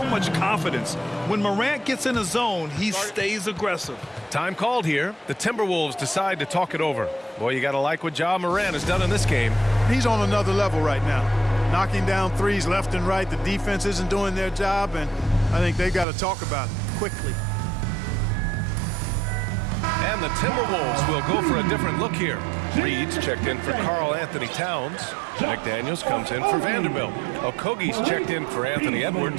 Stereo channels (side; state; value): left; drops out; at 16.1 s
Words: much confidence. When Morant gets in a zone, he stays aggressive. Time called here. The Timberwolves decide to talk it over. Boy, you got to like what Ja Morant has done in this game. He's on another level right now. Knocking down threes left and right. The defense isn't doing their job, and I think they've got to talk about it quickly. And the Timberwolves will go for a different look here. Reed's checked in for Karl Anthony Towns. McDaniels comes in for Vanderbilt. Okogie's checked in for Anthony